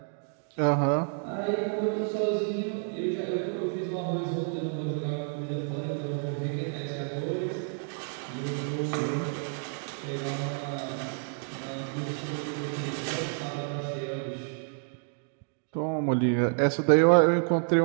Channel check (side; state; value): left; silent; 56 dB below the other